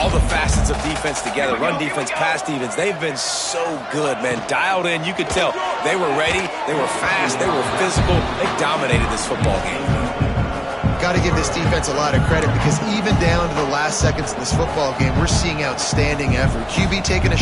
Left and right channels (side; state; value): both; identical; correlation 1.00